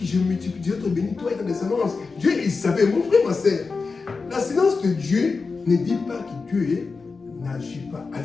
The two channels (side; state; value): right; quieter; 4.4 dB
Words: je multiplierai, te bénis, toi et ta descendance. Dieu, il savait, mon frère, ma sœur. La silence de Dieu ne dit pas que Dieu n'agit pas.